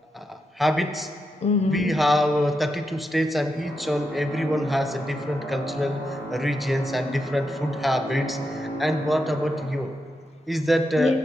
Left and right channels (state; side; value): normal; both; correlation 0.85